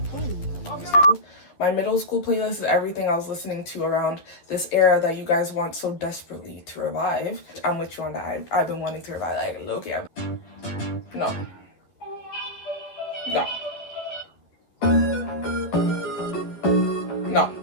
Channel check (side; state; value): right; late; 12 ms